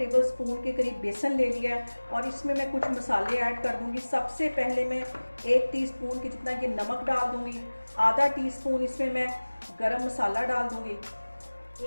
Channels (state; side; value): inverted; both; correlation -1.00